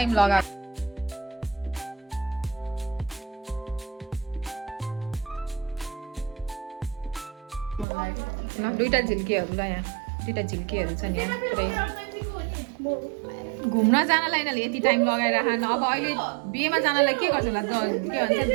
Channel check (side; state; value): left; drops out; at 7.9 s